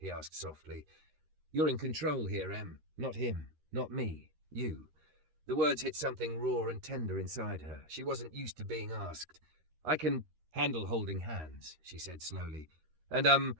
asked softly. "You're in control here, Em. Not him. Not me. You." The words hit something raw and tender inside her. She wasn't used to being asked. "I can handle holding hands," she said slowly. "And,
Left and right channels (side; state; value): left; late; 13 ms